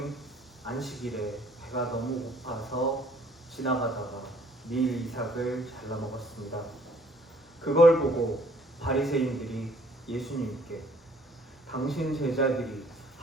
안식일에 배가 너무 고파서 지나가다가 밀 이삭을 잘라 먹었습니다. 그걸 보고 바리새인들이 예수님께 당신 제자들이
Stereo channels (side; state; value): both; normal; correlation 0.59